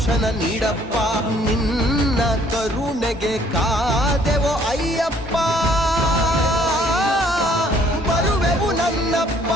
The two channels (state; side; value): normal; both; correlation 0.61